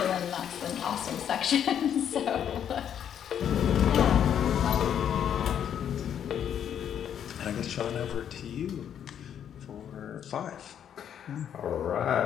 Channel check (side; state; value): right; quieter; 9.1 dB